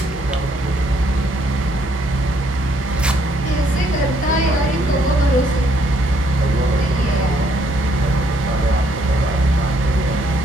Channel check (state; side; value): normal; both; correlation 0.69